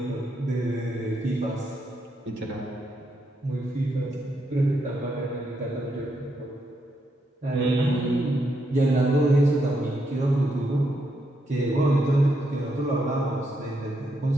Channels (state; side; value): normal; both; correlation 0.79